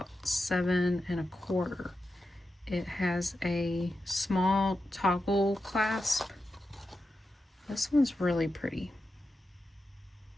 7 1/4. It has a small toggle clasp. This one's really pretty.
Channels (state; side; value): normal; both; correlation 0.90